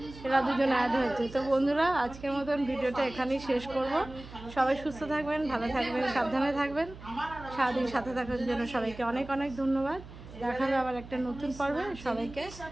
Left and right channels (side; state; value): right; noise; hum, 16 dB below the sound